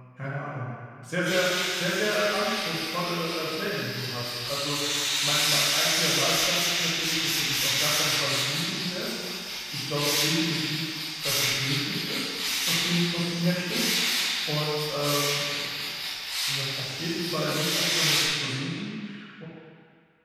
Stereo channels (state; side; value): identical; both; correlation 1.00